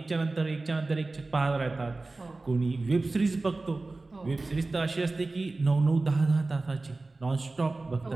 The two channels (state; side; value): quieter; left; 3.3 dB